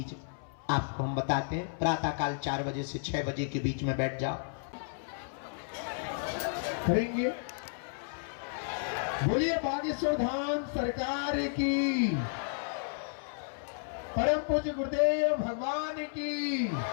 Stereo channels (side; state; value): right; silent; 56 dB below the other